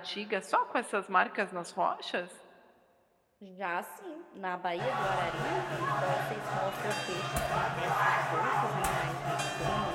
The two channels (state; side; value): identical; both; correlation 1.00